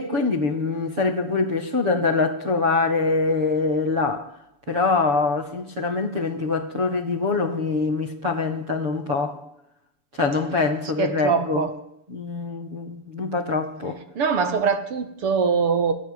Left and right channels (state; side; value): late; left; 7.0 ms